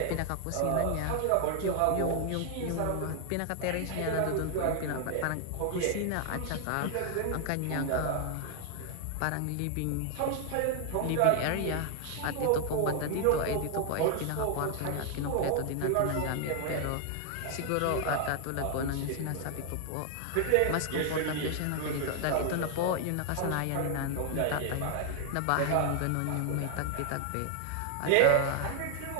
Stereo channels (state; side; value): different; both; correlation 0.00